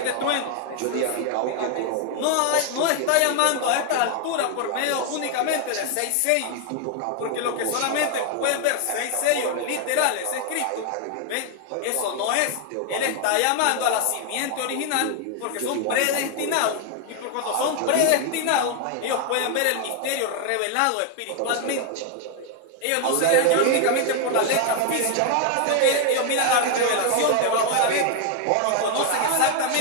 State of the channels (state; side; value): different; both; correlation 0.00